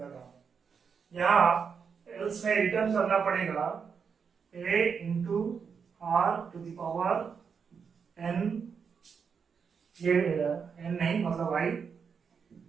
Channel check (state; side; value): quieter; left; 6.2 dB